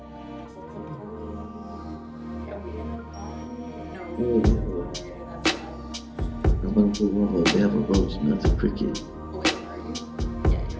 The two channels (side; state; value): both; identical; correlation 1.00